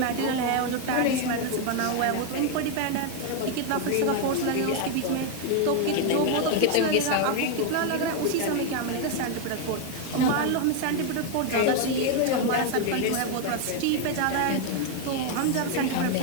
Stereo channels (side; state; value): both; different; correlation 0.01